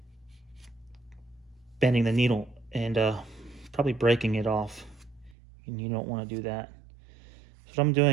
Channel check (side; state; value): left; drops out; at 5.4 s